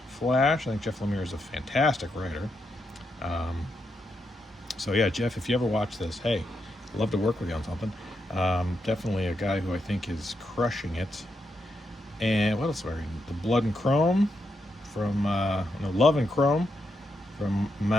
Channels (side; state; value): both; normal; correlation 0.83